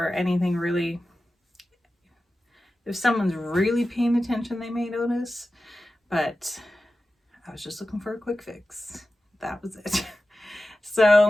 anything really. If someone's really paying attention, they may notice, but I was just looking for a quick fix. That was it.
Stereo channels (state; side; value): normal; both; correlation 0.94